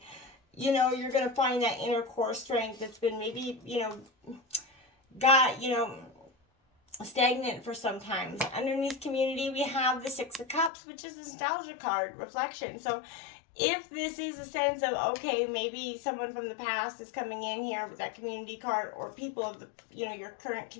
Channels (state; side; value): drops out; right; at 10.7 s